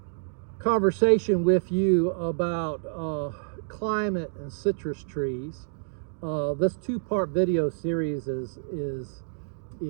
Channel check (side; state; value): left; silent; digital silence